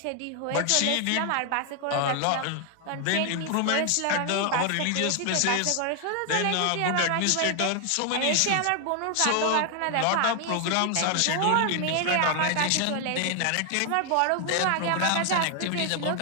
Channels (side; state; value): both; different; correlation 0.00